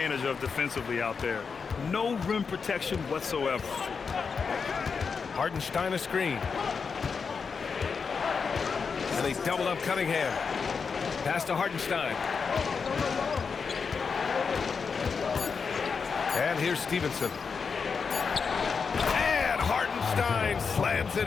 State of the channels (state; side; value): quieter; right; 5.5 dB